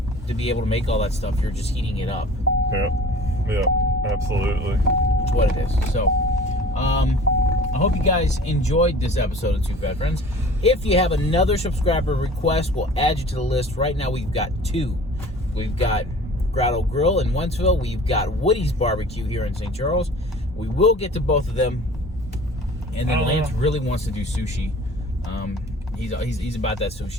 to be able to make all that stuff, you're just heating it up. Yeah, absolutely. That's what it is. So, I hope you guys enjoyed this episode of Two Fat Friends. If you have another subscriber request, we'll add you to the list. Right now, we've got 2. We've got Grotto Grill in Wentzville. We've got Woody's Barbecue here in St. Charles. We will get to both of them. And then Lance really wants to do sushi. He's about that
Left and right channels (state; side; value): normal; both; correlation 0.45